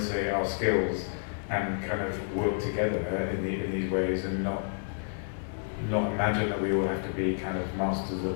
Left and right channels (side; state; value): right; silent; digital silence